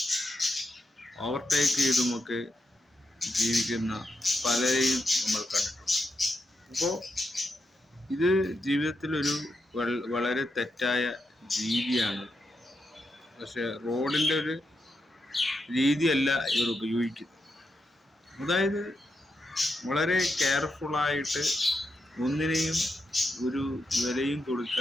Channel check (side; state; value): both; normal; correlation 0.84